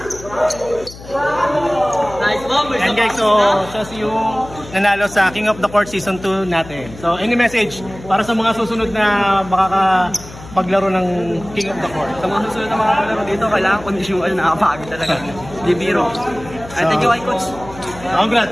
And guys, so siya yung nanalo sa King of the Court Season 2 natin. So any message para sa mga susunod na makakapaglaro ng King of the Court? Sa mga susunod na makapaglaro dito, kailangan conditional, nakakapagod talaga. Di biro. Thank you, Coach.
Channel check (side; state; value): left; noise; hum, 16 dB below the sound